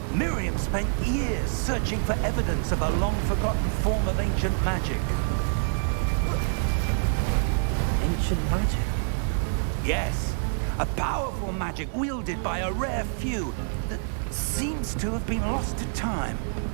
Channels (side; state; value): left; silent; 59 dB below the other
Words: Miriam spent years searching for evidence of a long-forgotten form of ancient magic. Ancient magic? Yes, a powerful magic wielded by a rare few that seems to have been lost to time.